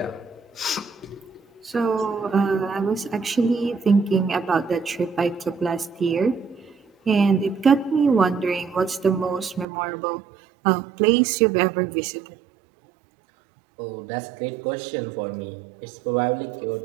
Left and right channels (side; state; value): left; drops out; at 9.7 s